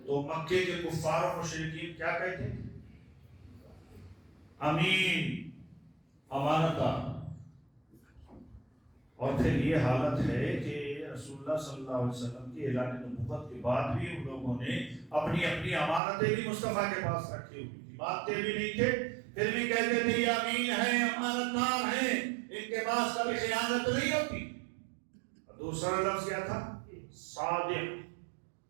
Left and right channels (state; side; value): drops out; left; at 16.0 s